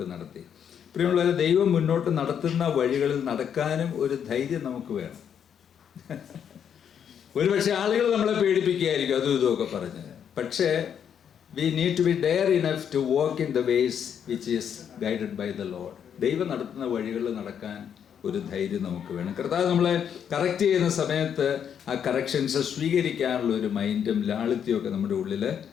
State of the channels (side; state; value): right; quieter; 8.3 dB